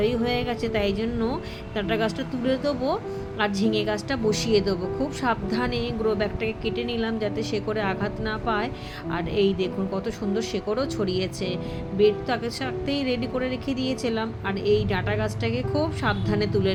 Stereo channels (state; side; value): identical; both; correlation 1.00